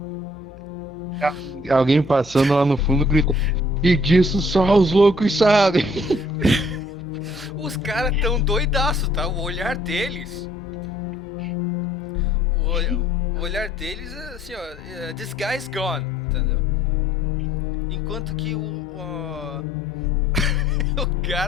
Alguém passando lá no fundo grita: e disso só os loucos sabem. Os caras tão doidaço, tá? O olhar deles... O olhar deles é assim, ó... This guy's gone, entendeu? Enquanto que o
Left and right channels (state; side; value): normal; both; correlation 0.61